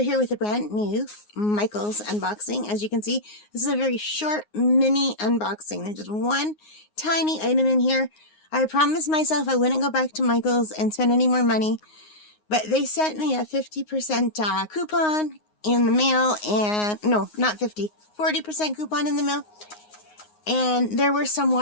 here with a brand new Michaels unboxing. As you can see, this is a very short mini unboxing. There's just one tiny item in here. I promised myself I wouldn't go back to Michaels and spend any more money, but they sent me a 50% coupon in the mail, and no, not 50, 40% coupon in the mail. And there were some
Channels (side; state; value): right; late; 9.6 ms